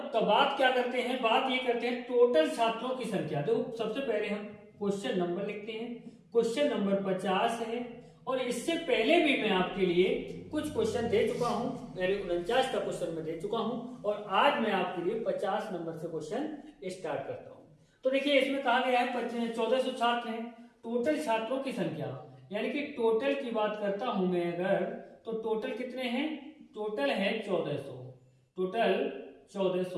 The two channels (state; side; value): identical; both; correlation 1.00